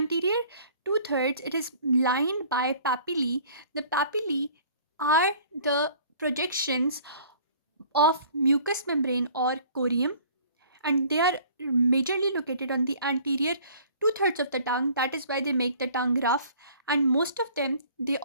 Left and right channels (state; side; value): inverted; both; correlation -0.52